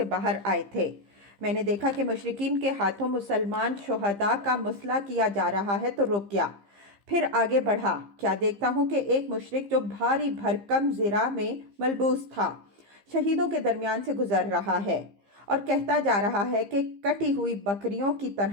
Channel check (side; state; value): left; late; 15 ms